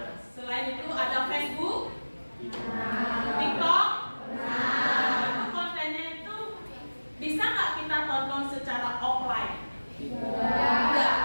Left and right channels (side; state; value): both; inverted; correlation -1.00